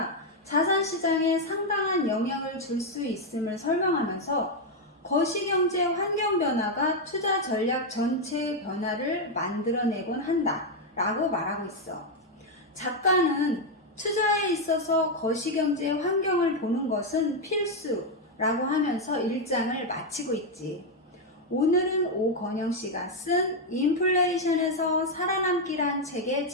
자산시장에 상당한 영향을 줄 수 있음을 설명하면서 거시경제 환경 변화가 투자 전략 전체의 변화를 만들어내곤 한다 라고 말하고 있어. 작가는 투자에 있어서 거시경제 환경을 보는 것은 필수라고 하면서 1장을 마치고 있지. 오늘은 오건영 씨가 쓴 인플레이션에서 살아남기란 책의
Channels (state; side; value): normal; both; correlation 0.02